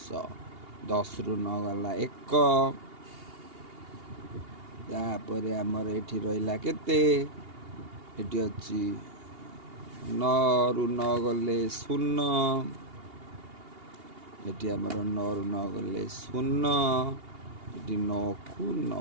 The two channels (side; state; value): left; late; 2.8 ms